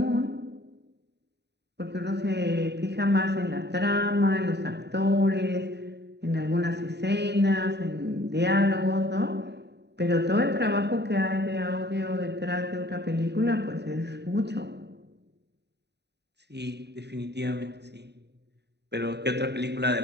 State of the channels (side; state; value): left; late; 0.50 ms